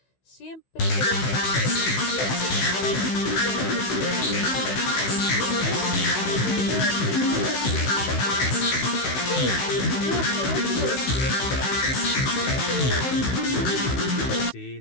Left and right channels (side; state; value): right; late; 16 ms